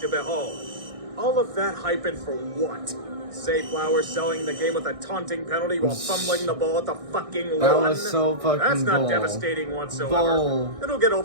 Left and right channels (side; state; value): left; late; 1.6 ms